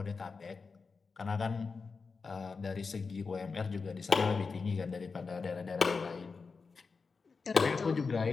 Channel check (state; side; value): quieter; right; 4.7 dB